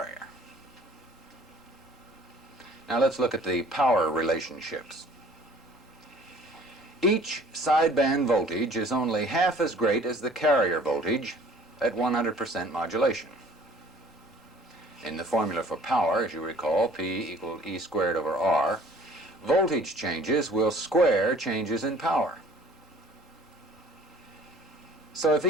Now let's look at the power relationships. Each sideband voltage is only half as great as the carrier voltage at 100% modulation. In the formula for power, as you recall, P equaled E squared over R, voltage changes will square changes in power. So if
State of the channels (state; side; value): normal; both; correlation 0.52